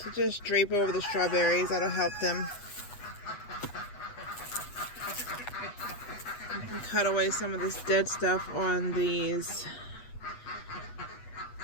just drape over the strawberries, that'll help them. You can cut away some of this dead stuff on these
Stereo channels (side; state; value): right; late; 8.2 ms